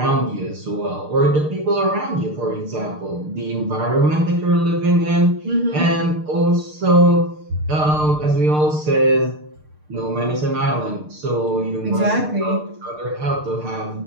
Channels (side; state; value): left; late; 6.6 ms